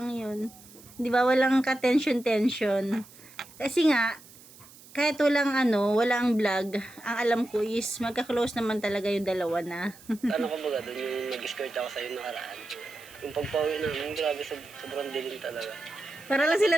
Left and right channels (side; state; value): right; noise; hiss, 22 dB below the sound